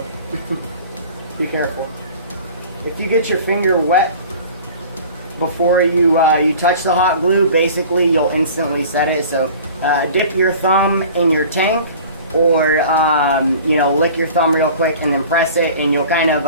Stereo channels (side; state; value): both; inverted; correlation -0.43